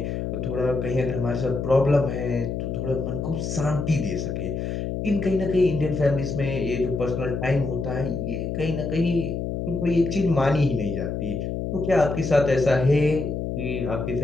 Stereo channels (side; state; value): left; noise; hum, 3 dB below the sound